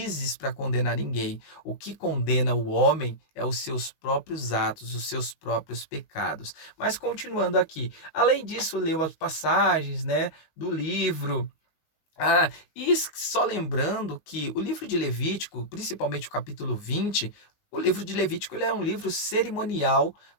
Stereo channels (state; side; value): late; right; 19 ms